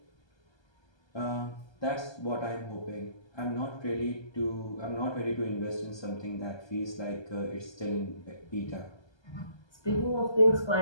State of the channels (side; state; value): right; late; 1.3 ms